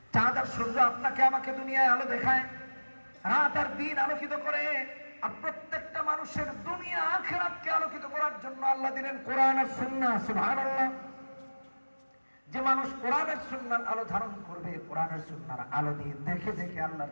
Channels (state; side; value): inverted; both; correlation -1.00